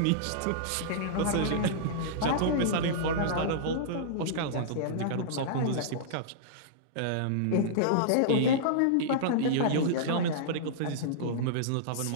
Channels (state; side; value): different; both; correlation -0.03